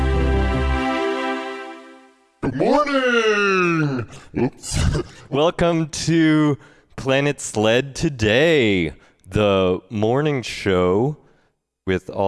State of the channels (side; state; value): both; identical; correlation 1.00